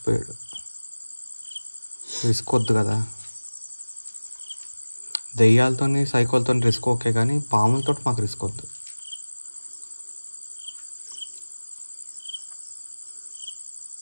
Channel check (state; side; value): inverted; both; correlation -1.00